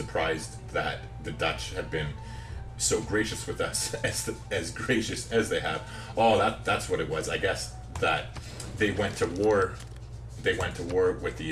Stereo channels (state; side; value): identical; both; correlation 1.00